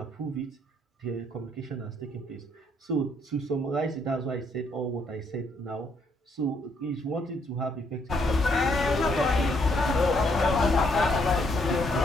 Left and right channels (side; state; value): both; normal; correlation 0.71